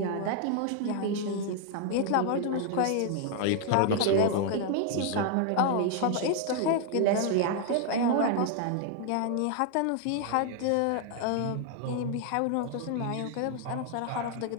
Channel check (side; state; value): both; different; correlation 0.00